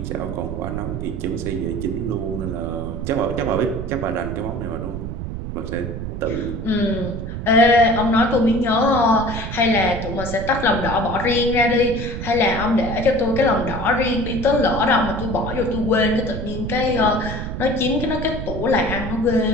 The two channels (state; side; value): noise; right; rumble, 6 dB below the sound